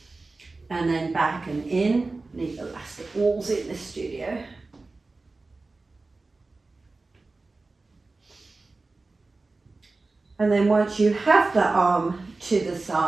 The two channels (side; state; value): left; quieter; 3.5 dB